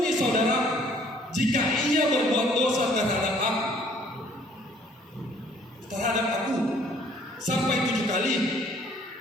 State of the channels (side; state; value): both; normal; correlation 0.59